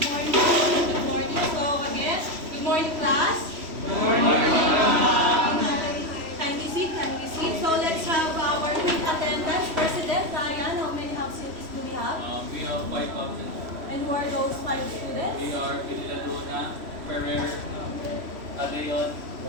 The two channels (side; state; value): left; late; 3.1 ms